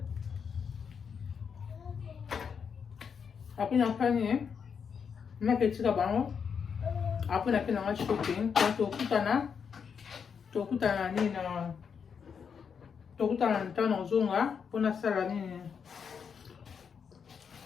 na fani na ketika bango après na pena ngai shopping to kutana ni na tokutana ntano zonga pona sala nini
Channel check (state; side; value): quieter; right; 6.6 dB